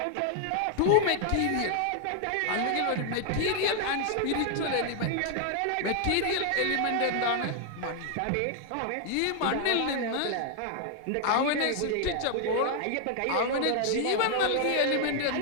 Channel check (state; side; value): different; both; correlation 0.00